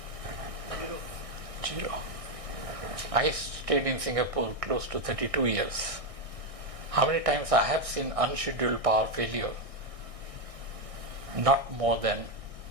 0. I stayed in Singapore close to 32 years. How many times I have seen unscheduled power failure? Not more than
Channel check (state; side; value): late; left; 1.6 ms